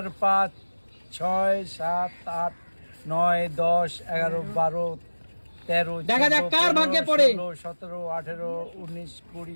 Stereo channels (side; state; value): both; inverted; correlation -1.00